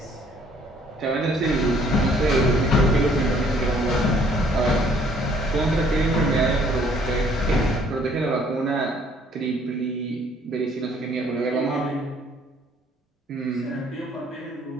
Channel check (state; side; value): normal; both; correlation 0.61